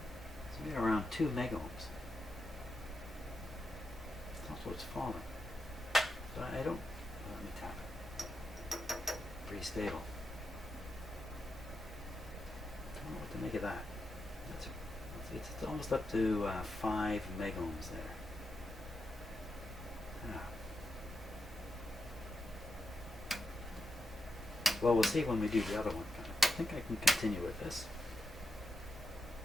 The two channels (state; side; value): normal; both; correlation 0.86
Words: made around 2 megohms. That's what's falling. But I don't. Let me tap it. Pretty stable. Don't know what to make of that. It's almost up to 5 megohms there. Ah. Well, we'll see when we do the other one. I think I can continue with this.